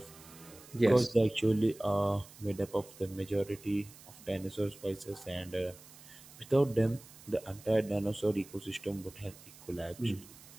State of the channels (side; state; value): right; noise; hiss, 20 dB below the sound